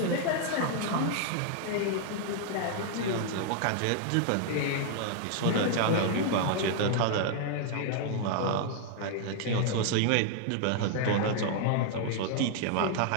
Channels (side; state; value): both; different; correlation 0.00